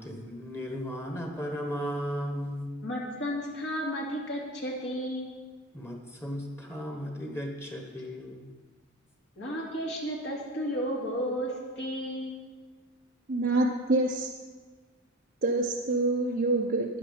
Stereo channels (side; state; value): both; normal; correlation 0.30